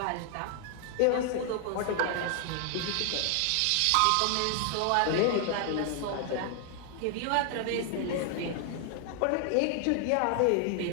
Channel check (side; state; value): both; different; correlation 0.00